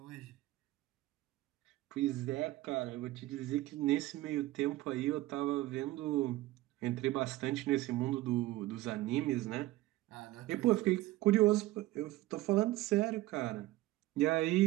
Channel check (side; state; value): left; quieter; 17.1 dB